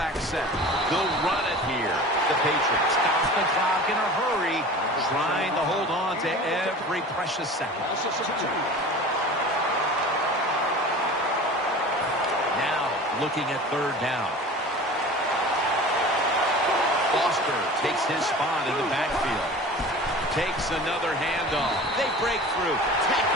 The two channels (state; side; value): normal; both; correlation 0.38